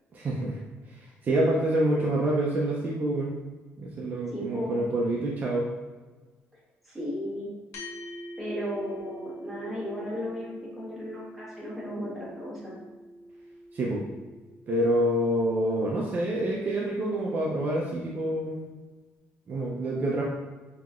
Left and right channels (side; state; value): both; normal; correlation 0.64